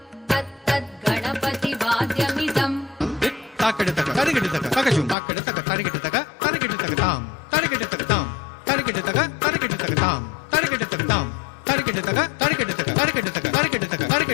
तत्तत् गणपतिवाद्यमिदम् ताकड़तक तरिगिडतक तकजुम ताकड़तक तरिगिडतक तरिगिडतक ताम तरिगिडतक ताम तरिगिडतक तरिगिडतक ताम तरिगिडतक ताम तरिगिडतक तरिगिडतक तरिगिडतक तरिगिडतक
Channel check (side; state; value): right; drops out; at 5.2 s